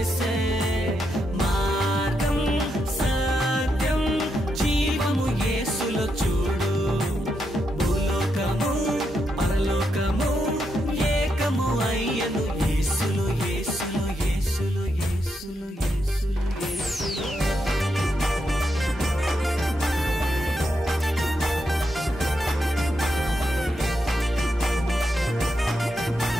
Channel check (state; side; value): normal; both; correlation 0.83